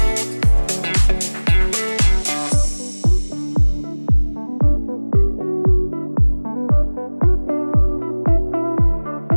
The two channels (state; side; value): inverted; both; correlation -1.00